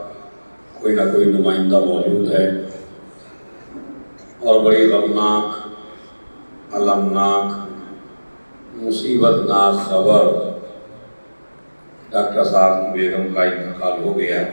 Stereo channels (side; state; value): both; inverted; correlation -1.00